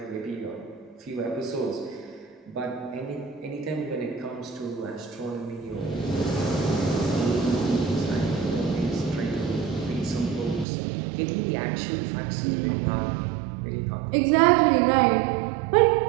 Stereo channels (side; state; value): left; drops out; at 10.7 s